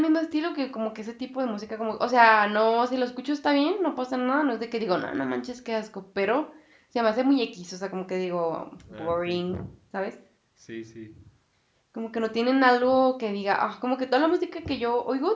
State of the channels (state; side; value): identical; both; correlation 1.00